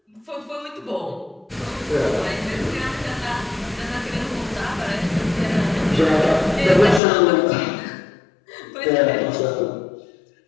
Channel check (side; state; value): right; drops out; at 7.0 s